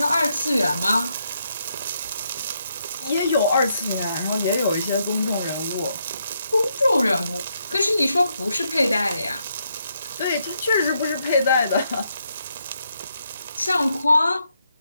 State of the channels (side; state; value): both; inverted; correlation -0.78